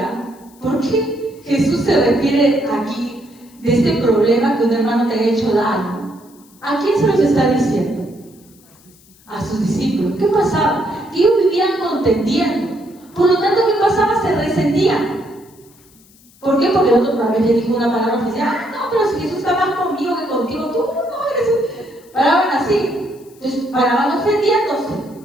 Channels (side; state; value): left; noise; hiss, 28 dB below the sound